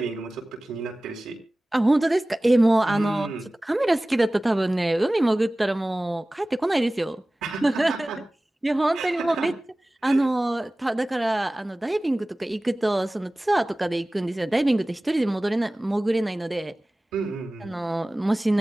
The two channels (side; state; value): both; normal; correlation 0.98